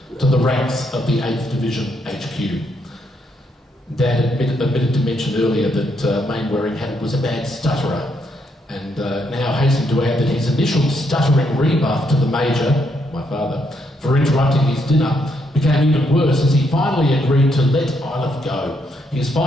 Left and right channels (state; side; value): normal; both; correlation 0.76